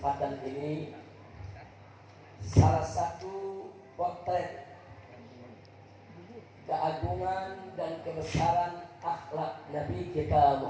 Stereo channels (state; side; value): identical; both; correlation 1.00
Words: ini salah satu potret keagungan dan kebesaran akhlak Nabi kita